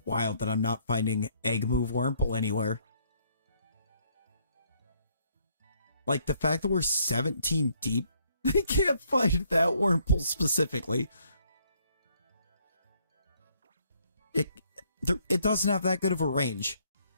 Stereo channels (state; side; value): inverted; both; correlation -0.68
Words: wild that I'm not finding Egg Move Wurmple anywhere. Like, the fact that we're 17 deep, I can't find that Wurmple specifically. It doesn't have that good of a range.